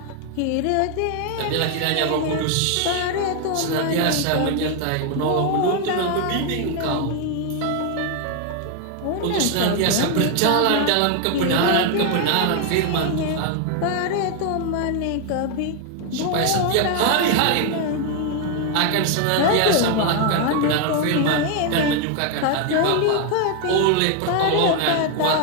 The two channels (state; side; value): different; both; correlation 0.01